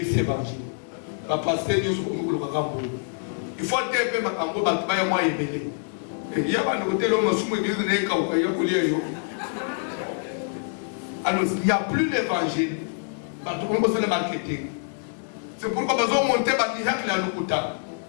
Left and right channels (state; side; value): silent; right; 61 dB below the other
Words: c'est évangile. La pasteur nous il faut dire que ma cambo va travailler moins élevé. Il y a un côté l'homme sous l'église n'est qu'au pays alors il n'y a plus l'évangile. Tout le monde le marketing. C'est pourquoi nous avons monté par miracle à l'Okuta.